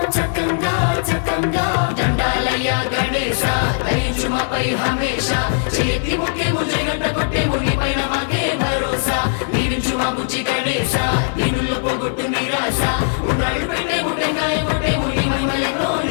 చక్కంగా దండాలయ్య గణేశ దయించుమపై హమేష చేతి ముఖ్య ముజగంట కొట్టేము నీ పైన మాకే భరోసా దీవించు మా బుజ్జి గణేశ దీనుల్లో పోగొట్టు నిరాశ ఉండ్రాళ్ళు పెట్టేము టెంకాయ కొట్టేము నీ మహిమలెన్నో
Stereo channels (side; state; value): right; silent; digital silence